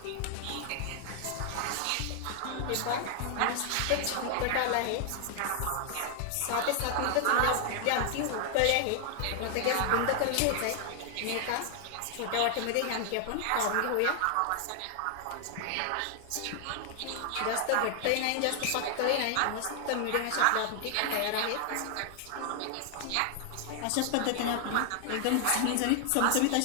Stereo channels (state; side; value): different; both; correlation 0.00